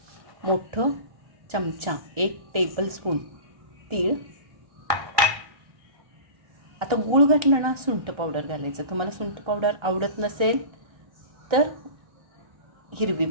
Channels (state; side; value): late; left; 1.2 ms